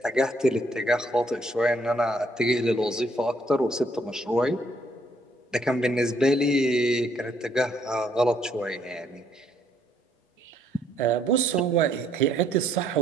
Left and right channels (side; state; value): both; normal; correlation 0.68